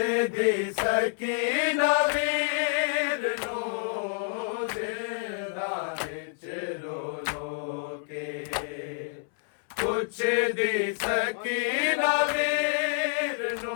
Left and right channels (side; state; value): right; silent; 59 dB below the other